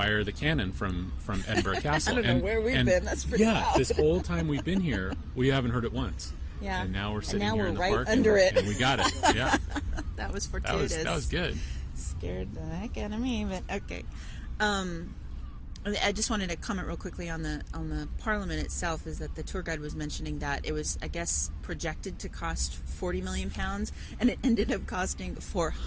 the cannon from Edinburgh Castle. I don't know where we've been. That's pretty Yeah, loud. this whole time we've been here, we haven't heard it once. Yeah. And now we're sitting now here we're in the right park under and, it. and we got it. Yeah, That was that fortuitous. was good. Scared the heck out of me, but okay. I just wanted to comment real quickly on the Parliament itself. Is that the tour guide was mentioning that it was, I guess, projected to cost £40 million, and it ended up costing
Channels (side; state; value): both; identical; correlation 1.00